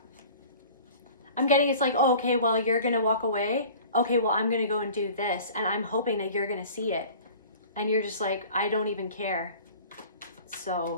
I'm getting, it's like, oh, okay, well, you're going to walk away. Okay, well, I'm going to go and do this. And I'm hoping that you're going to see it. And you're just like, I don't even care.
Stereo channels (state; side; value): inverted; both; correlation -0.44